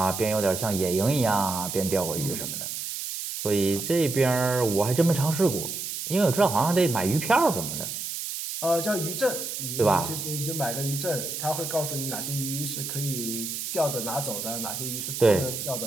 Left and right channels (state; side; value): noise; right; hiss, 5 dB below the sound